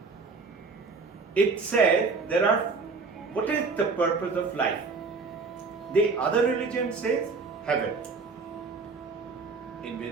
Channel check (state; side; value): quieter; left; 4.4 dB